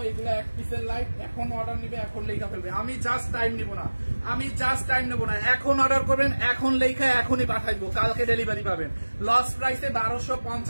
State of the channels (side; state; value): both; inverted; correlation -1.00